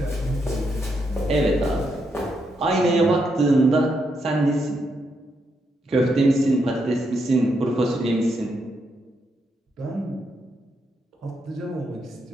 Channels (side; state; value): both; normal; correlation 0.80